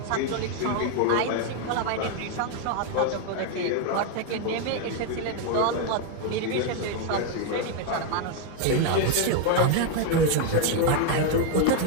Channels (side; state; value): both; different; correlation 0.01